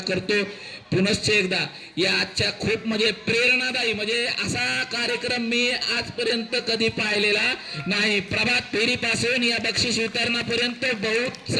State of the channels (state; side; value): identical; both; correlation 1.00